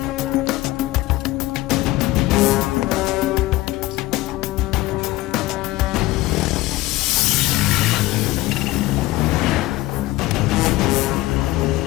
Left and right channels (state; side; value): quieter; right; 18.3 dB